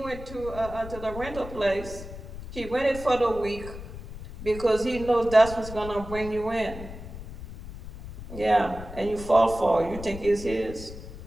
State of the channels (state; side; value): noise; left; rumble, 12 dB below the sound